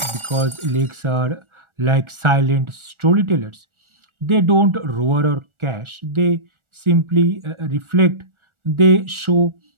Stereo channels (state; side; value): late; left; 1.4 ms